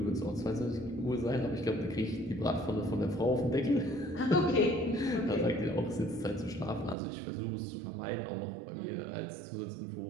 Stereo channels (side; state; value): left; drops out; at 7.0 s